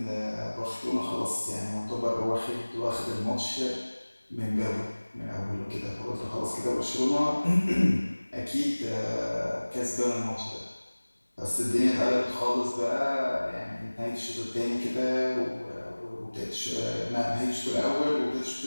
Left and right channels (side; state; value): both; inverted; correlation -1.00